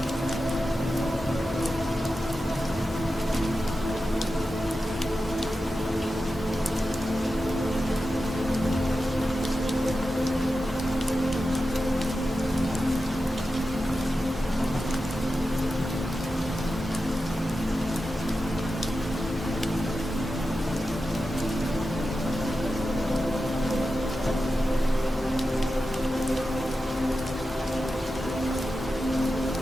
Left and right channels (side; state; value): both; normal; correlation 0.91